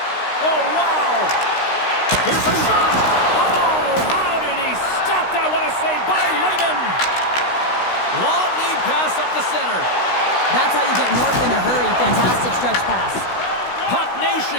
wow. Here's a shot. Oh, how did he stop that? What a save by Layman. Long lead pass up the center. That's how you get north in a hurry. Fantastic stretch pass. Puck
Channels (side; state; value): right; late; 16 ms